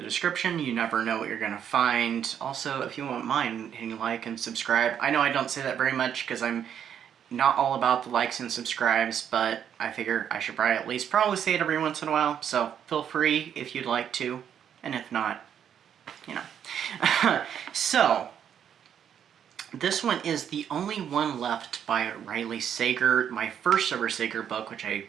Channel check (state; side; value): quieter; left; 8.9 dB